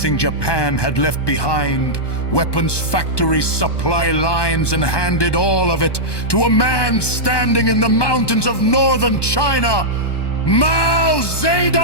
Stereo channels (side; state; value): right; late; 1.2 ms